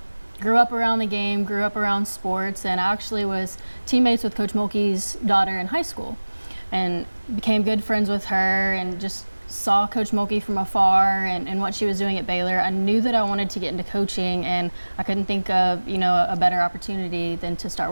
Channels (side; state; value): both; inverted; correlation -1.00